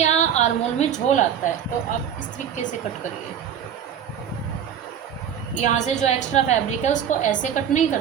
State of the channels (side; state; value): left; quieter; 8.7 dB